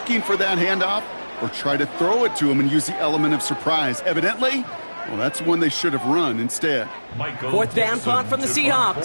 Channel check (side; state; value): both; inverted; correlation -1.00